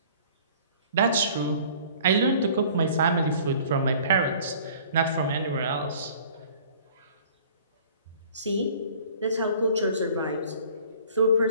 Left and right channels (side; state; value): both; inverted; correlation -0.50